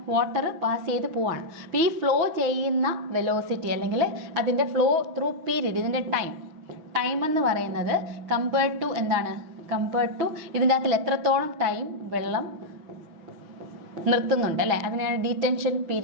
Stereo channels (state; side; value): late; left; 6.1 ms